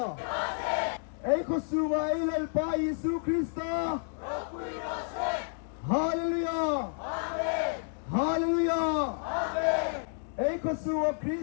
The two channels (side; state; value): right; silent; digital silence